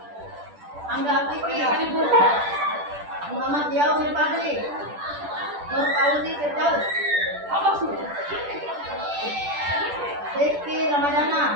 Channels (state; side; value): late; left; 10 ms